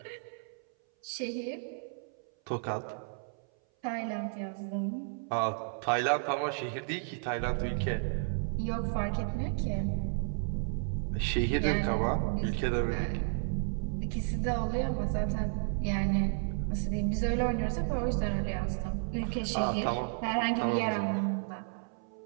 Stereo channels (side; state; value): left; silent; 56 dB below the other